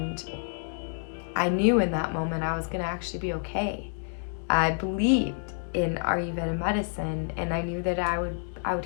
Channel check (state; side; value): silent; right; 59 dB below the other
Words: I knew in that moment I was going to actually be okay. I believed in Ayurveda medicine, and I knew that I would